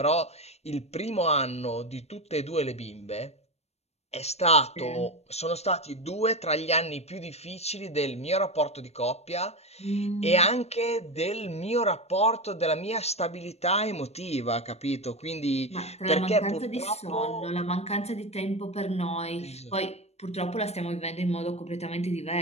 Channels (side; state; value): right; late; 0.31 ms